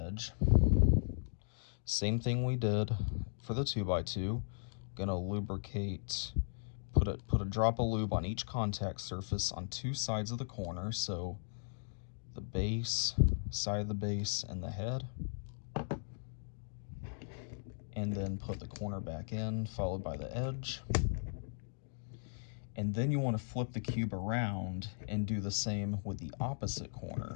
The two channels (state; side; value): silent; right; digital silence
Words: Same thing we did for the 2x2. Going to lubricate, put a drop of lube on each contact surface on two sides of the corner, so the base, side of the base, and the head. And then put the corner back in, followed by the edge. And then you want to flip the cube around and do the same with the opposite